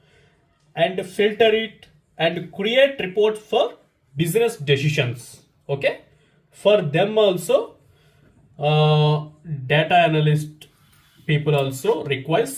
and filter it and create reports for business decisions. Okay, for them also data analyst people also require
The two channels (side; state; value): both; identical; correlation 1.00